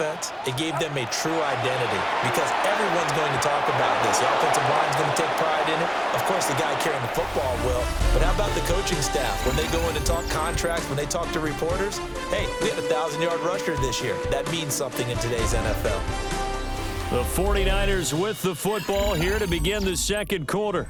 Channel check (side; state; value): both; identical; correlation 1.00